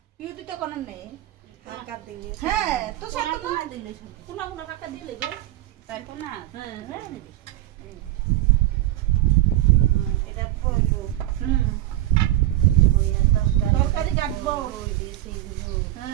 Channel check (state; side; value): quieter; left; 15.2 dB